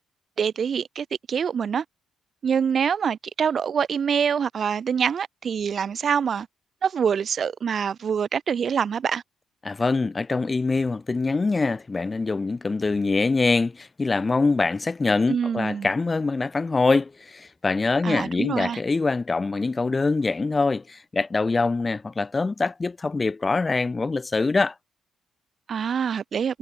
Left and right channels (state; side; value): normal; both; correlation 0.87